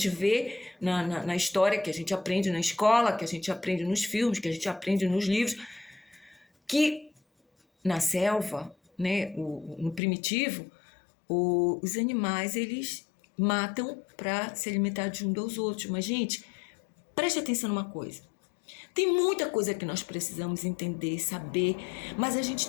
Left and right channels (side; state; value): right; drops out; at 10.0 s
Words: vê na história, que a gente aprende na escola, que a gente aprende nos filmes, que a gente aprende nos livros, que na selva, né, no primitivo, os animais, eles matam para se alimentar de um dos outros. Mas, gente, preste atenção numa coisa. Tem muita coisa que nós precisamos entender, saber, mas a gente